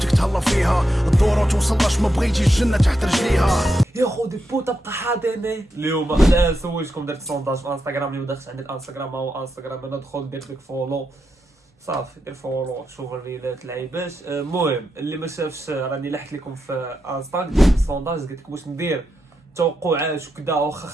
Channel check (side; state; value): both; normal; correlation 0.85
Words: تهلا فيها، الدورة توصلش ما بغيتي الجنة تحت رجليها. يا خودي بوطه بقى حاضني. اليوم انا سولتكم درت سونداج في انستغرام، اللي دخلت عند الانستغرام هو انستغرام، انا دخل درت لك فولو صافي، دير فولو شوف الريلات لعيبات. المهم اللي ما شافش راني لحت لكم في انستغرام درت سونداج، قلت لكم واش ندير توقعات وكذا،